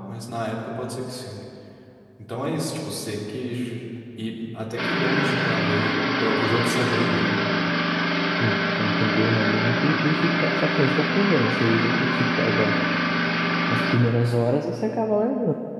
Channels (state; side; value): identical; both; correlation 1.00